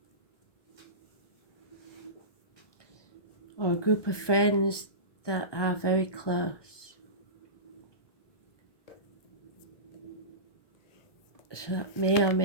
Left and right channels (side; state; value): right; late; 1.2 ms